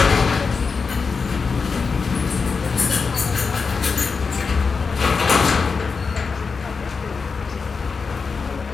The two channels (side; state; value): right; quieter; 5.0 dB